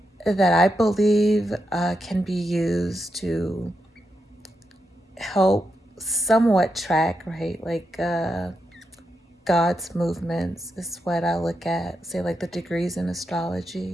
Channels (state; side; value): normal; both; correlation 0.84